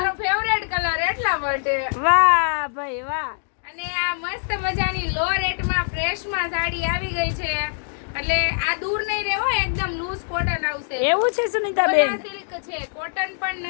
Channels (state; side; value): silent; right; digital silence